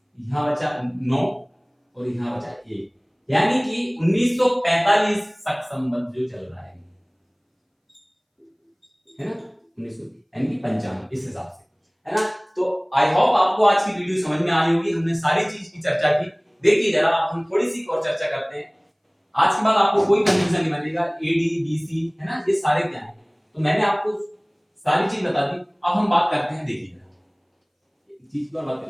यहाँ बचा 9 और यहाँ बचा 1, यानी कि 1945 शक संबंध जो चल रहा है ना, 1900 यानी कि 55 इस हिसाब से, है ना। तो आई होप आपको आज की वीडियो समझ में आई होगी, हमने सारी चीज की चर्चा की। देखिए जरा अब हम थोड़ी सी और चर्चा करते हैं। आज के बाद आपको कोई कंफ्यूजन नहीं बनेगा, एडी बीसी है ना, ये सारे क्या है, तो मैंने आपको सारी चीज बता दी। अब हम बात करते हैं, देखिए चीज पर बात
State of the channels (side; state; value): both; identical; correlation 1.00